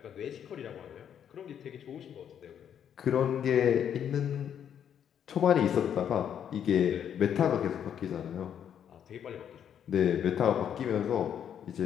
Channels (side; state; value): right; quieter; 9.0 dB